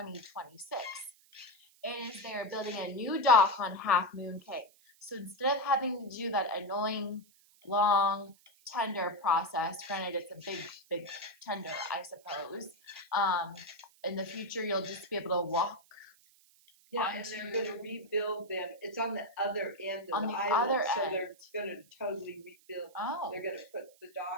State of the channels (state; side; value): noise; right; hiss, 29 dB below the sound